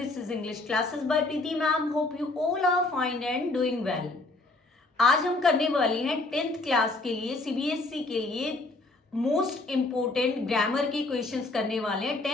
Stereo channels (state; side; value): quieter; right; 3.1 dB